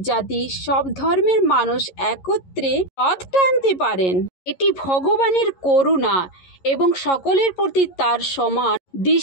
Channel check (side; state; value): right; late; 11 ms